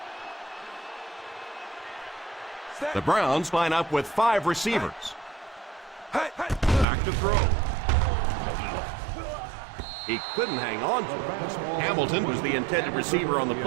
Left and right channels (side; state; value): left; drops out; at 6.9 s